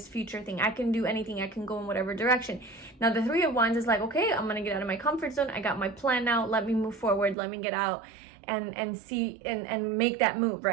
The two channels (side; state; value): left; drops out; at 7.4 s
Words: future thing. I can do anything. I can go in whatever direction. Now, the 3 of Wands is like, okay, I'm going to get out of my comfort zone. I got my plan now. Let me move forward. Let me get out and see and make that move,